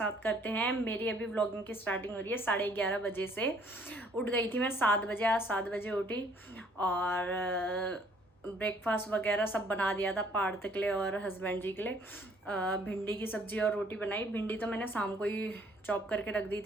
करते हैं। मेरी अभी व्लॉगिंग की स्टार्टिंग हो रही है 11:30 बजे से। उठ गई थी मैं 7 बजे, आज 7 बजे उठी और ब्रेकफास्ट वगैरह सब बना दिया था पार्थ के लिए और हस्बैंड जी के लिए। भिंडी की सब्जी और रोटी बनाई। भिंडी तो मैंने शाम को ही चॉप करके रख दी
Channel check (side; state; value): both; normal; correlation 0.61